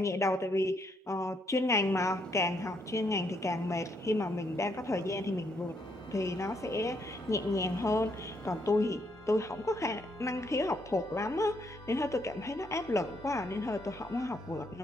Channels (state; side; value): normal; both; correlation 0.74